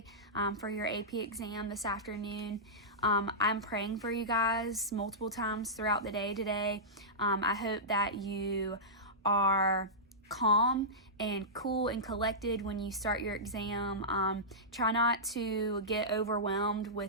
for your AP exam this afternoon. I'm praying for you guys multiple times throughout the day today. I hope that you are calm and cool and collected when you start your exam. Try not to get overwhelmed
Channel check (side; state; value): both; normal; correlation -0.15